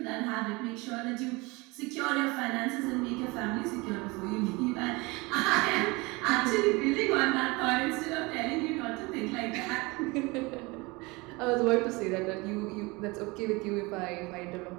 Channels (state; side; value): quieter; left; 24.9 dB